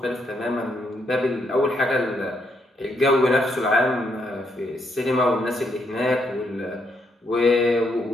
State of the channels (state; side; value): normal; both; correlation 0.76